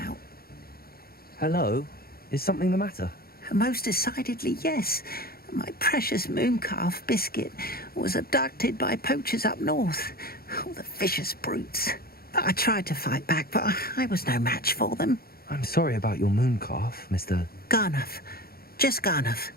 Hello? Is something the matter? Most decidedly, yes. My precious moon calf, Biscuit, was abducted by poachers up north. Oh, the vicious brutes. I tried to fight back, but I was no match for them. I'm sorry about your moon calf, Mr. Garnuff. Just Garnuff.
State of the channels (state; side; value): late; right; 0.44 ms